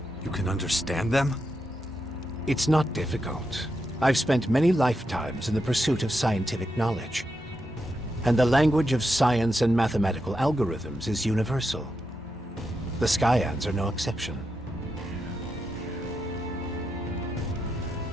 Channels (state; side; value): normal; both; correlation 0.86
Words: You can understand them? It's not difficult. I've spent many lifetimes in the pursuit of scientific knowledge. And the language of science and mathematical algorithms is universal. The Skyans are no exception.